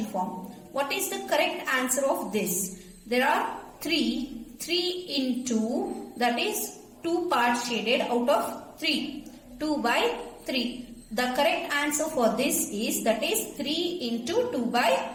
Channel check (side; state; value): both; identical; correlation 1.00